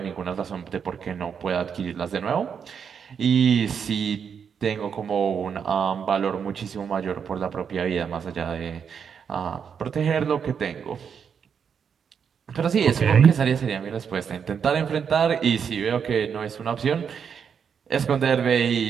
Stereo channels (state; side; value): quieter; left; 7.1 dB